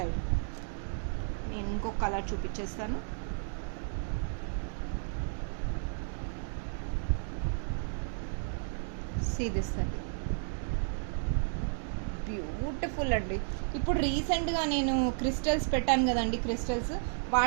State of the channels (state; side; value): silent; left; digital silence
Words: నేను ఇంకొక కలర్ చూపించేస్తాను. సీ దిస్ అండి, బ్యూటిఫుల్ అండి. ఇప్పుడు రీసెంట్గా నేను క్రిస్టల్స్ పెట్టాను కదండి, క్రిస్టల్స్